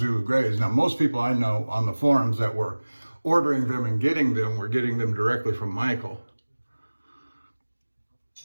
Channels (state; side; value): inverted; both; correlation -1.00